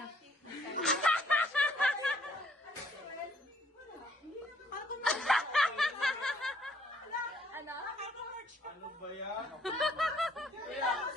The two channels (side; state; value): both; normal; correlation 0.65